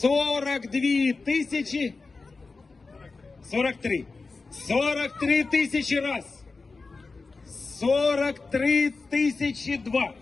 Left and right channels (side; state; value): right; quieter; 4.0 dB